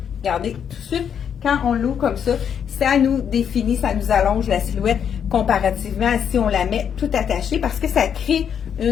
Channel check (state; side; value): quieter; right; 8.1 dB